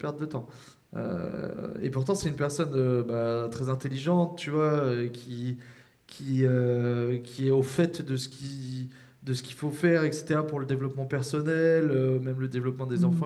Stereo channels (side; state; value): both; identical; correlation 1.00